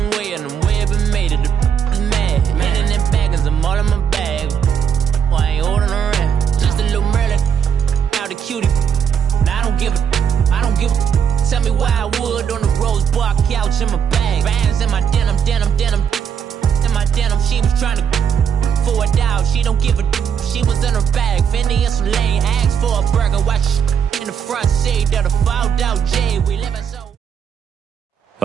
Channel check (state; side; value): quieter; left; 7.5 dB